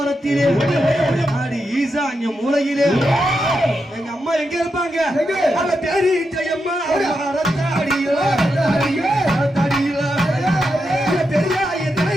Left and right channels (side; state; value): both; normal; correlation 0.86